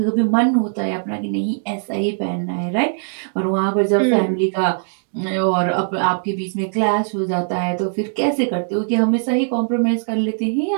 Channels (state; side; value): silent; left; digital silence